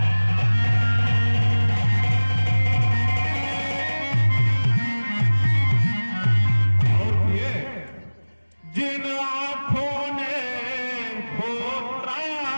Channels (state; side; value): inverted; both; correlation -1.00